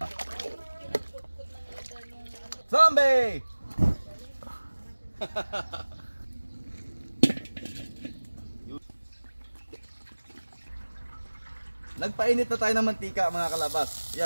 Zombie! Nagpainit na tayo ng mantika mga kalabas.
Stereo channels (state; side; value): inverted; both; correlation -1.00